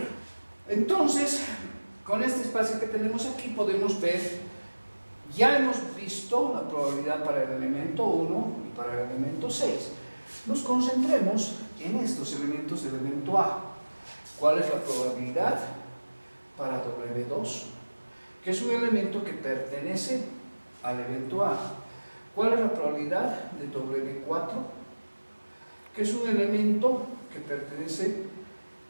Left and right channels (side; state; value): both; inverted; correlation -1.00